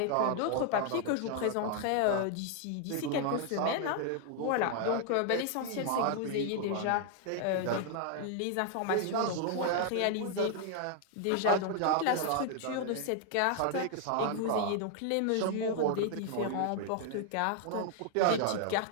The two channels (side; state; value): both; different; correlation 0.00